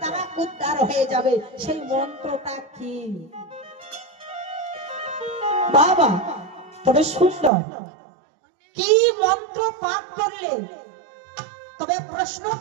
তারা উদ্ধার হয়ে যাবে সেই মন্ত্রটা কি বাবা তবে সুন্দর কি মন্ত্র পাঠ করলে তবে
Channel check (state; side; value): drops out; left; at 7.5 s